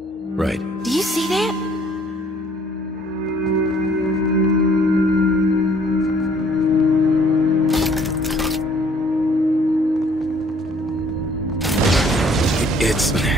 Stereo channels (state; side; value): normal; both; correlation 0.59